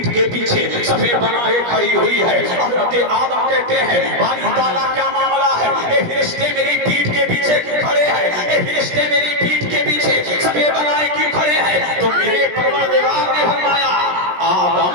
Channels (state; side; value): late; left; 17 ms